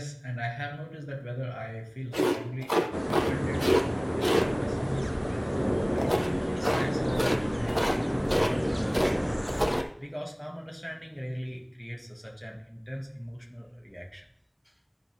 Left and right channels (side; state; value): both; identical; correlation 1.00